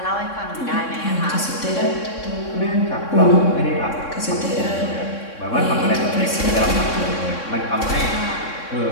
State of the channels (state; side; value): late; right; 3.6 ms